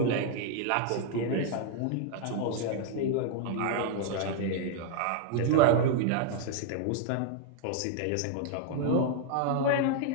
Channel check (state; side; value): different; both; correlation 0.00